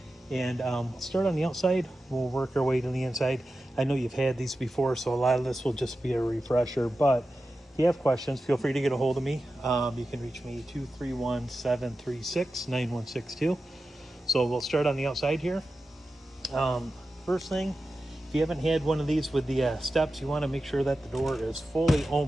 And start on the outside, we'll work our way to the inside. I know you've had these before, so a lot of this will just be a refresher, but if you have questions, feel free to get a hold of me. You can reach me 231-736-9162. So we'll start on the outside here. First thing, if you haven't had one of these with the steps, you want to make sure that the door is fully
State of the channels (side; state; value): both; normal; correlation 0.92